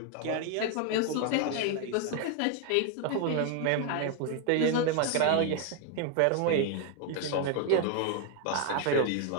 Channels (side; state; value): both; different; correlation 0.01